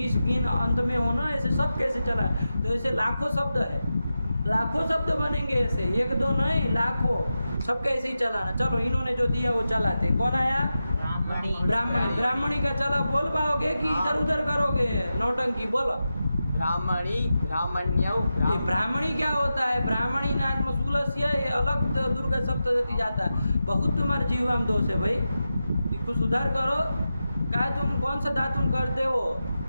अंत में होना, ऐसे सब कैसे चला? तो ऐसे लाखों शब्द है, लाखों शब्द बनेंगे ऐसे, एक दो नहीं लाखों, सब कैसे ही चलाना। चलो इन्होंने जो दिया वो चलाते। कौन आया? ब्राह्मणी का चला, बोल पाओगे कि इधर उधर करोगे नौटंकी? बोलो। ब्राह्मण्यौ। ये ब्राह्मणी क्या होता है? ब्राह्मणी नात्म सुलस्य, ये अलग दुर्गा सप्तशती जाता है। बहुत तुम्हारे जीवाम दोष है भाई, इसको सुधार करो। क्या तुम कौन सा दातुन करते हो?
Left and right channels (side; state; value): both; inverted; correlation -0.91